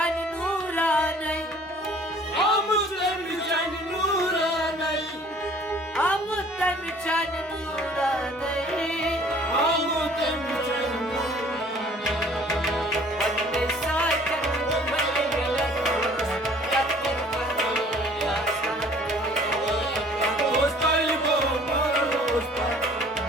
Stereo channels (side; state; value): both; normal; correlation 0.53